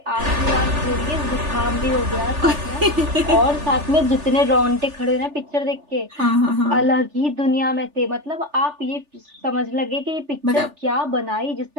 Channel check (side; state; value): left; late; 3.4 ms